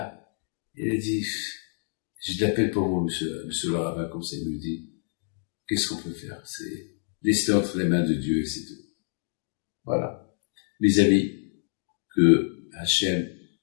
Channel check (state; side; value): silent; right; 60 dB below the other